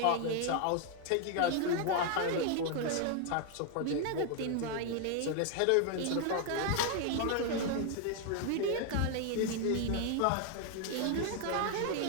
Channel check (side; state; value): both; different; correlation 0.00